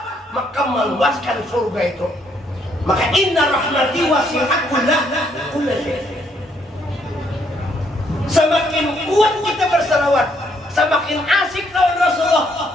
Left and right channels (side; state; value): both; normal; correlation 0.70